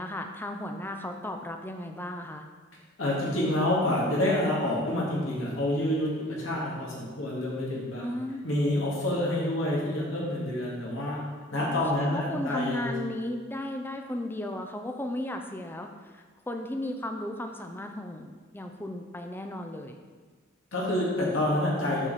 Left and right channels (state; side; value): normal; both; correlation 0.49